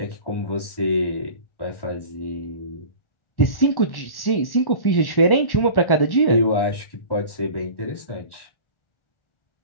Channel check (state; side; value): late; right; 1.1 ms